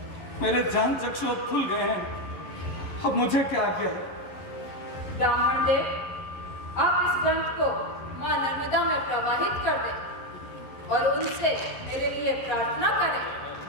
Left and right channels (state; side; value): late; right; 11 ms